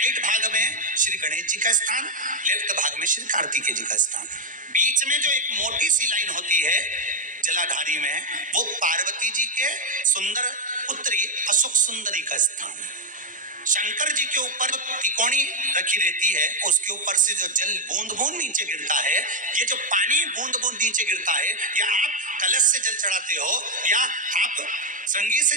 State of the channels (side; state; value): both; normal; correlation 0.03